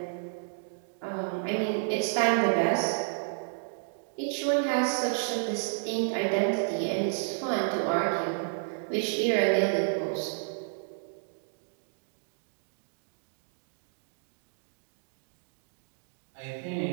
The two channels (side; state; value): left; silent; digital silence